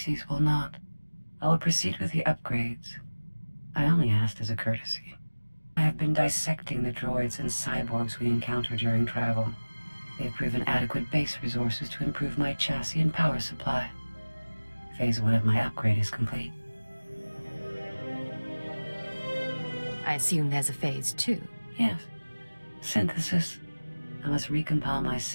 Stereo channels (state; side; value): inverted; both; correlation -1.00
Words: will not. I will proceed with the upgrades. I only asked as a courtesy. I have been dissecting the droids and cyborgs we encounter during travel. They have proven adequate base resources to improve my chassis and power supply. Phase 1 of my upgrade is complete. I assume there's a phase 2. Yes. Synthesis. I must recompile my